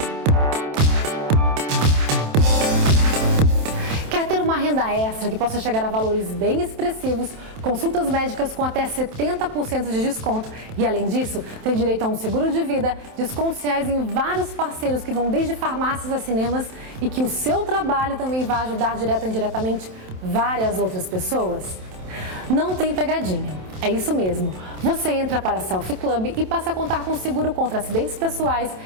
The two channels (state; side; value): late; left; 27 ms